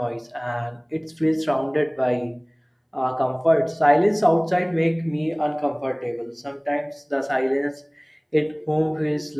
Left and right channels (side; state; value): both; identical; correlation 1.00